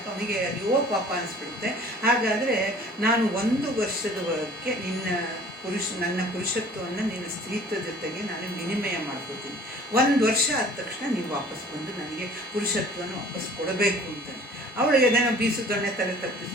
ಅವನಿಗೆ ಅಯ್ಯೋ ಪಾಪ ಅನಿಸ್ಬಿಡುತ್ತೆ. ಹಾಗಾದರೆ ನಾನು 1 ವರ್ಷದವರೆಗೆ ನನ್ನ ಪುರುಷತ್ವವನ್ನು ನಿನ್ನ ಸ್ತ್ರೀತ್ವ ಜೊತೆಗೆ ನಾನು ವಿನಿಮಯ ಮಾಡ್ಕೋತೀನಿ. 1 ವರ್ಷ ಆದ ತಕ್ಷಣ ನೀವು ವಾಪಸ್ ಬಂದು ನನಗೆ ಪುರುಷತ್ವನ ವಾಪಸ್ ಕೊಡಬೇಕು ಅಂತಾನೆ. ಅವಳಿಗೆ ಅದನ್ನು ಬೀಸು ದೊಣ್ಣೆ ತಲೆ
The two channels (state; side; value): normal; both; correlation 0.49